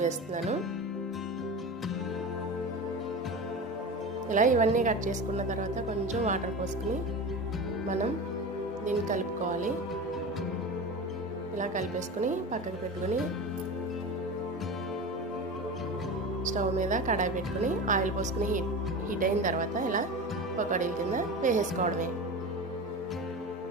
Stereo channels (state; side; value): normal; both; correlation 0.28